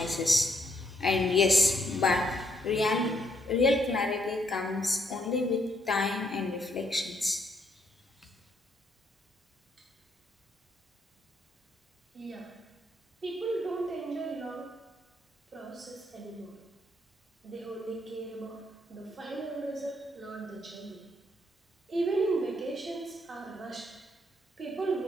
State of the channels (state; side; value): normal; both; correlation 0.73